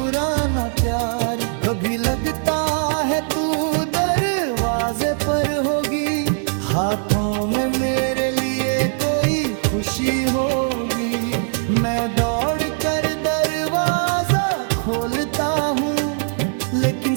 प्यार। कभी लगता है तू दरवाजे पर होगी, हाथों में मेरे लिए कोई खुशी होगी। मैं दौड़ कर दरवाजा खोलता हूँ, लेकिन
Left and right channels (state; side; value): silent; left; digital silence